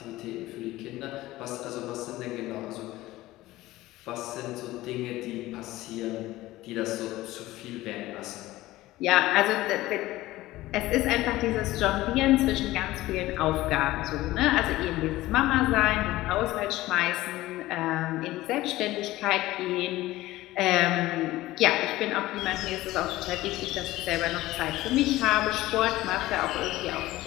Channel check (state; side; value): quieter; right; 17.1 dB